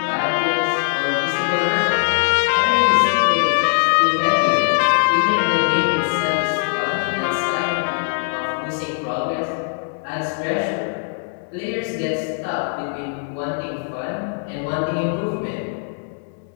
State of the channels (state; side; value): silent; right; digital silence